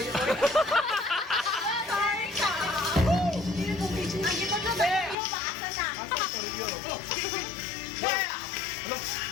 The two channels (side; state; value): right; drops out; at 5.2 s